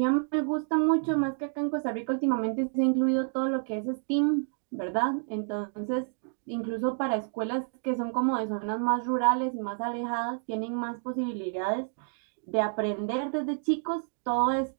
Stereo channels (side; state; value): left; silent; 56 dB below the other